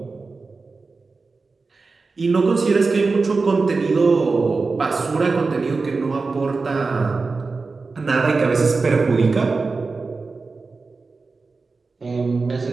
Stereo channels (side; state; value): left; quieter; 4.1 dB